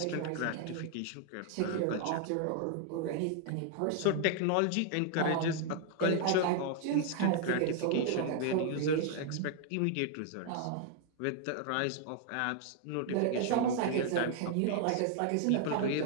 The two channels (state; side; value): different; both; correlation 0.00